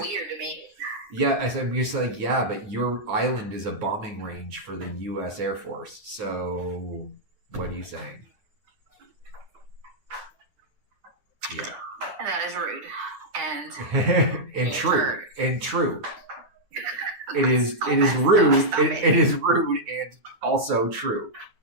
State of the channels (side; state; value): left; late; 9.5 ms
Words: weird to me. Yeah, I'm gonna say yeah, but your island is a bombing range for the U.S. Air Force. So what are you saying? Yeah. And that is rude. And and true. It is rude. It is rude and also true.